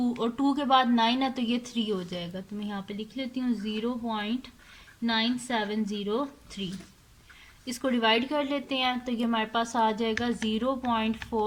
और 2 के बाद 9 है तो ये 3 हो जाएगा। तो मैं यहाँ पे लिख लेती हूँ 0.9703। इसको डिवाइड कर लेते हैं तो ये हमारे पास आ जाएगा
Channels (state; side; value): identical; both; correlation 1.00